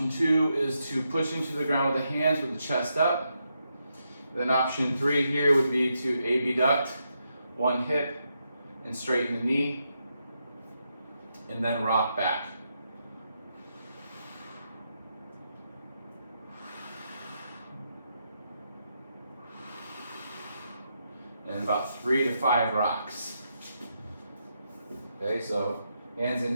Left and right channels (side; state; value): both; inverted; correlation -0.82